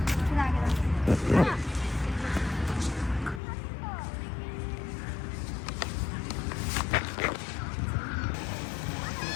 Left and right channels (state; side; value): drops out; right; at 3.4 s